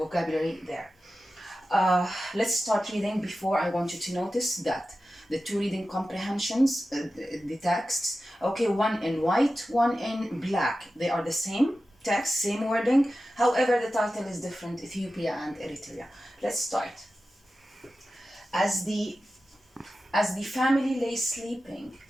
there. Let's start reading. Before, I want you to notice that the two reading comprehensions, the texts, okay, one in white, one in black. They are the same text, same wording. However, the title is different, Ethiopia and Eritrea. Let's start. As the family lay sleeping,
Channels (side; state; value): both; normal; correlation 0.93